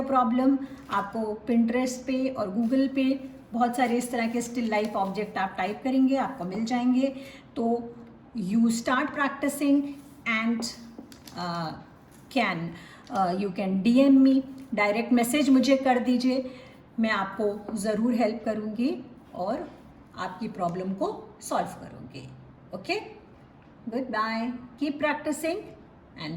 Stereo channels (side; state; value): both; identical; correlation 1.00